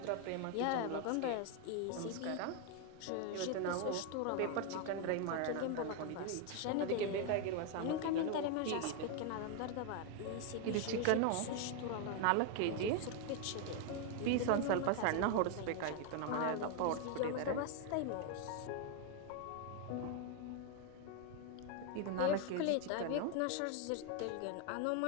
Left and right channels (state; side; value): different; both; correlation 0.01